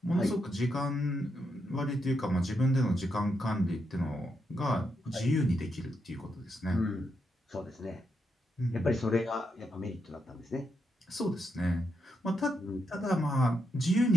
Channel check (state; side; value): normal; both; correlation 0.82